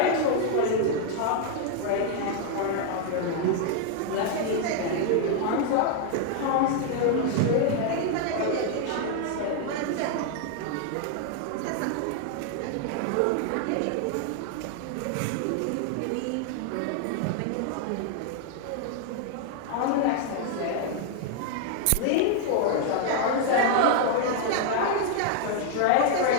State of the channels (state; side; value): different; both; correlation 0.00